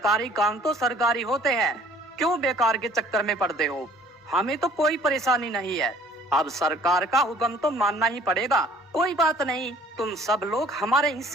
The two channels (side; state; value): both; normal; correlation 0.54